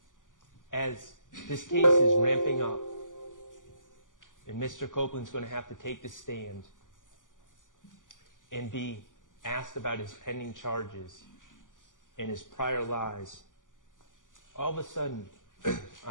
as this case is ramping up, and Mr. Copeland's going to have to take the stand and be asked about his pending charges and his prior lies, all of a sudden,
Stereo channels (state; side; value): late; right; 0.88 ms